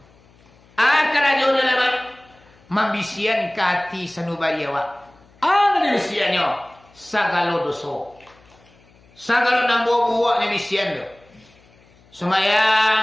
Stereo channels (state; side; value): noise; left; hum, 29 dB below the sound